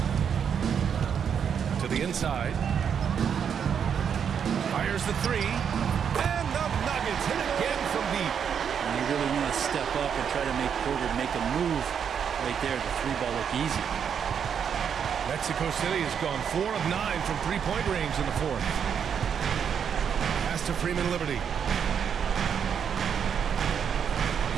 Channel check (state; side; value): quieter; left; 7.6 dB